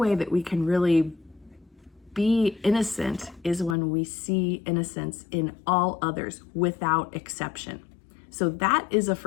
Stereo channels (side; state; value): right; drops out; at 3.8 s